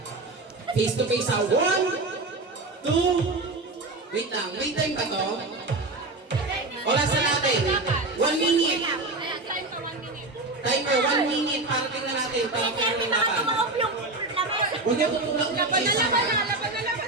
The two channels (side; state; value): left; quieter; 3.1 dB